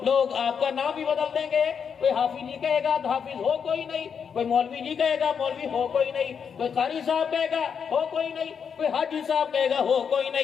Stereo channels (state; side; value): quieter; right; 6.9 dB